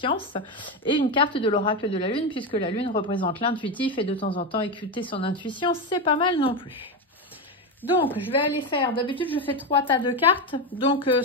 et une carte de l'oracle de la lune, puisque la lune représente l'intuitif et de temps en temps écouter son intuition, c'est pas mal non plus. Donc, je vais aller faire, d'habitude je fais 3 tas de cartes, donc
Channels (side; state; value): both; normal; correlation 0.13